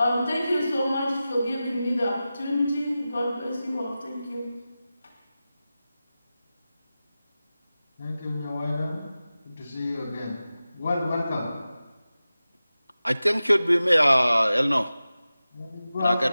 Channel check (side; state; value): both; inverted; correlation -0.94